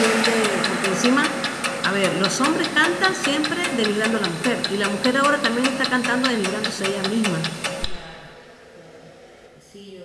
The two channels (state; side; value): identical; both; correlation 1.00